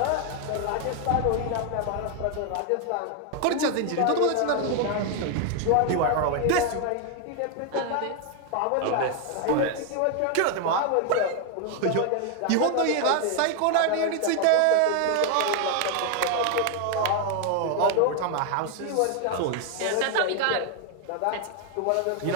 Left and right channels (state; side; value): different; both; correlation 0.00